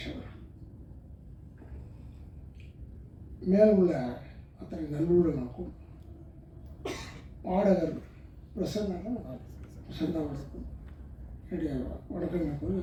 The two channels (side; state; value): both; identical; correlation 1.00